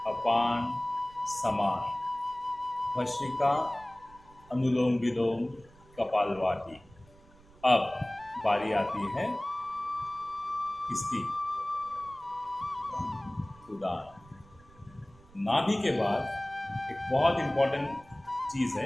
अपान, समान, भस्त्रिका, अनुलोम विलोम, कपालभाति. अब बारी आती है किसकी? उदान. नाभि के बाद एक बहुत इंपॉर्टेंट चीज़ है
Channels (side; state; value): right; noise; rumble, 25 dB below the sound